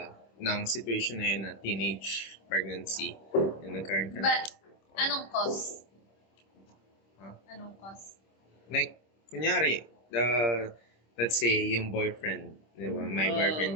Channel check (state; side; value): late; right; 26 ms